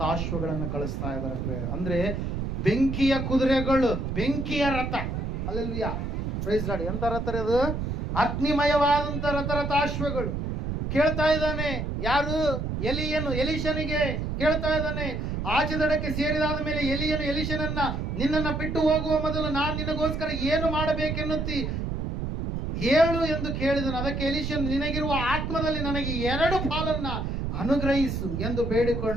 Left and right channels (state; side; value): noise; right; rumble, 3 dB below the sound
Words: ಕಳಿಸ್ತಾ ಇದಾರೆ ಪ್ರಿಯರೇ. ಅಂದ್ರೆ ಬೆಂಕಿಯ ಕುದುರೆಗಳು, ಬೆಂಕಿಯ ರಥ. ಹಲ್ಲೆಲೂಯಾ. Praise Lord. ಎಂತ ರಥ ಅದು? ಅಗ್ನಿಮಯವಾದಂತ ರಥಾಶ್ವಗಳು. ಕೇಳ್ತಾ ಇದ್ದಾನೆ ಯಾರು? ಎಲೀಷನಿಗೆ ಕೇಳ್ತಾ ಇದ್ದಾನೆ. ಆಚೆ ದಡಕ್ಕೆ ಸೇರಿದಾದ ಮೇಲೆ ಎಲೀಷನನ್ನ ನಿನ್ನನ್ನ ಬಿಟ್ಟು ಹೋಗುವ ಮೊದಲು ನಾನು ನಿನಗೋಸ್ಕರ ಏನು ಮಾಡಬೇಕೆನ್ನುತ್ತಿ ಹೇಳು ಎಂದು ಕೇಳಿದನು. ಅದಕ್ಕೆ ಎಲೀಷನ್, ನಿನಗಿರುವ ಆತ್ಮದಲ್ಲಿ ನನಗೆ 2 ಪಾಲನ್ನ ಅನುಗ್ರಹಿಸು ಎಂದು